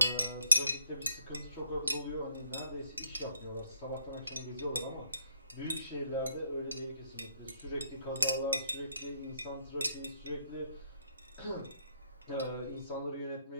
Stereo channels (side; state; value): both; inverted; correlation -0.71